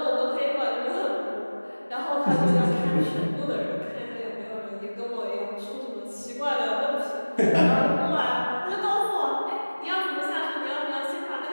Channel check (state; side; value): inverted; both; correlation -1.00